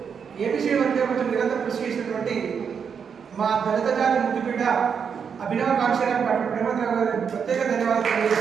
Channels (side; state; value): left; quieter; 6.8 dB